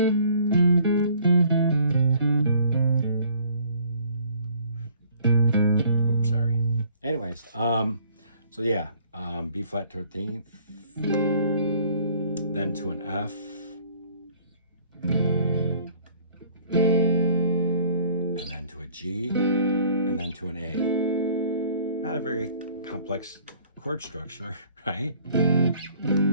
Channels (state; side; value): inverted; both; correlation -0.56